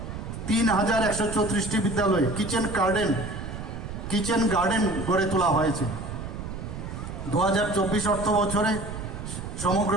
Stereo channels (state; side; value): noise; right; rumble, 8 dB below the sound